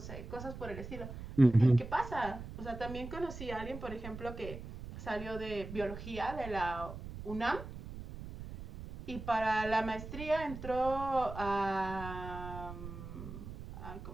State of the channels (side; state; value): right; noise; rumble, 10 dB below the sound